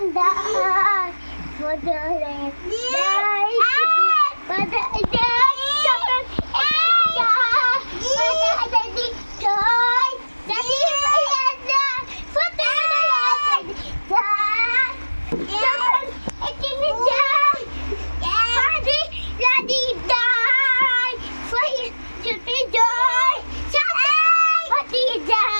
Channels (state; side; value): inverted; both; correlation -1.00